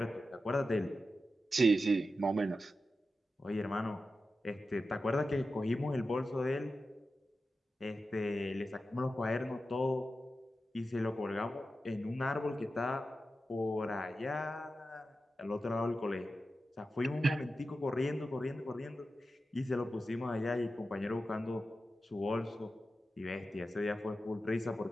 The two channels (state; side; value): normal; both; correlation 0.92